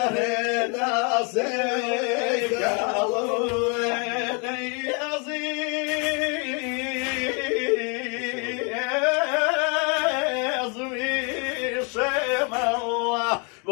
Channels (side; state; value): right; quieter; 34.9 dB